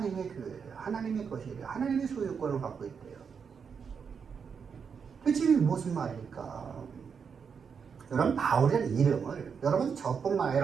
교회예요. 하나님의 것이에요. 하나님의 소유권을 갖고 있대요. 대체 무슨 말일까? 여러분 바울이라는 이름을 여러분 저뿐만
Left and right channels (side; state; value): left; quieter; 6.4 dB